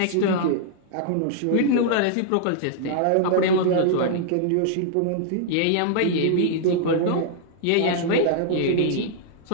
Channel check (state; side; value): different; both; correlation -0.01